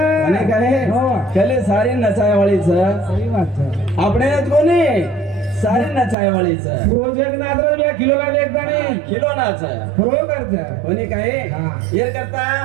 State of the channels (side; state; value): left; drops out; at 6.2 s